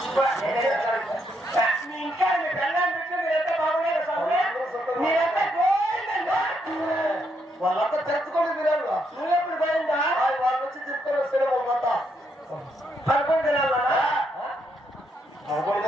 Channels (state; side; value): normal; both; correlation 0.76